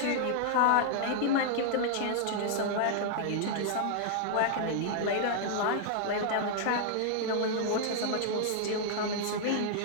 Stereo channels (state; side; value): different; both; correlation 0.00